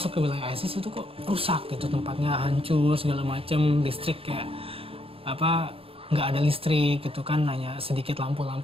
ke wilayah ISIS itu kok rusak gitu, tempatnya hancur segala macam, listrik kayak nggak ada listrik gitu kan, hanya sedikit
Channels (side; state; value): left; late; 0.27 ms